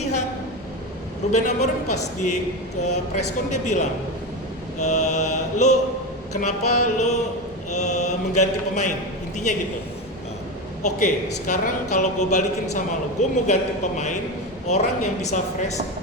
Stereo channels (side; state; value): both; normal; correlation 0.19